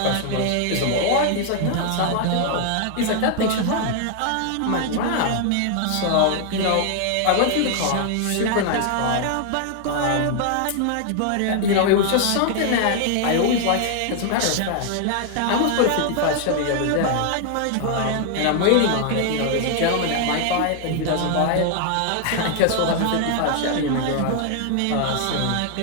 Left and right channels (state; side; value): different; both; correlation 0.00